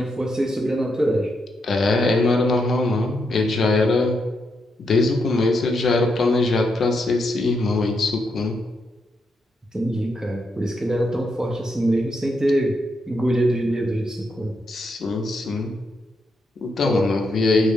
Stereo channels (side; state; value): both; normal; correlation 0.81